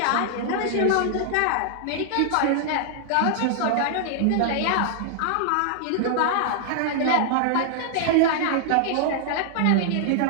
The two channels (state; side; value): different; both; correlation -0.01